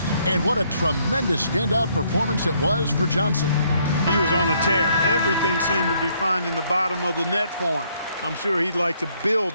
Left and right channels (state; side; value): inverted; both; correlation -0.69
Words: And what a tremendous standout performance it was for Johnson. He was on a tear. Everything seemed to be finding the bottom of the net for him. I'm sure he'd like to build